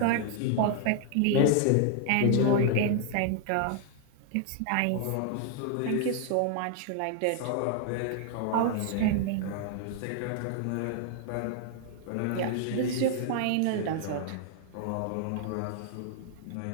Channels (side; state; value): both; different; correlation 0.00